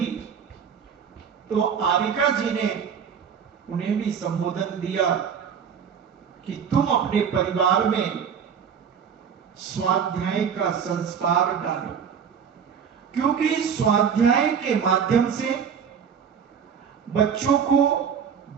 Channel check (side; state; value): left; quieter; 7.4 dB